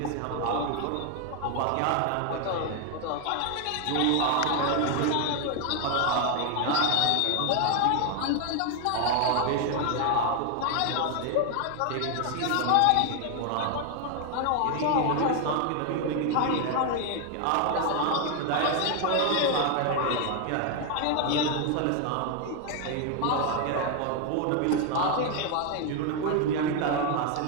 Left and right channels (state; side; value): different; both; correlation 0.01